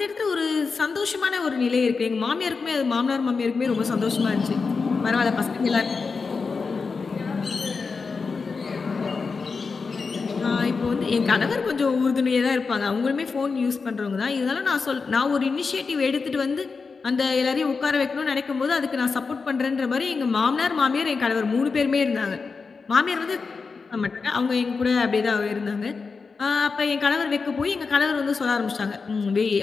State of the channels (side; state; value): right; quieter; 4.7 dB